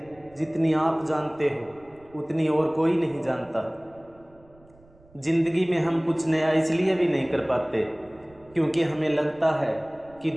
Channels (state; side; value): noise; right; rumble, 28 dB below the sound